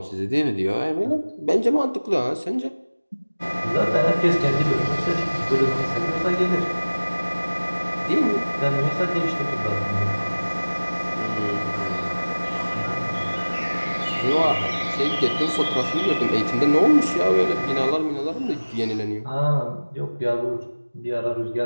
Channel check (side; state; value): both; inverted; correlation -1.00